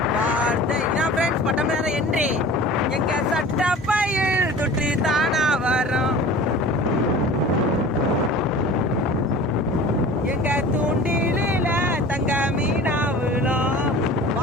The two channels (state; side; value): normal; both; correlation 0.40